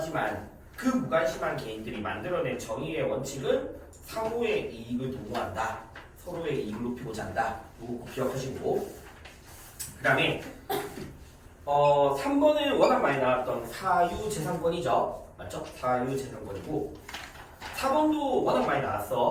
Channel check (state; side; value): identical; both; correlation 1.00